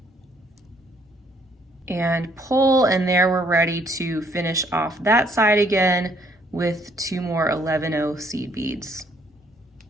and pull, and there we're ready to finish off that side again with 2 more 11-0 seed beads.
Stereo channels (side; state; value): both; normal; correlation 0.65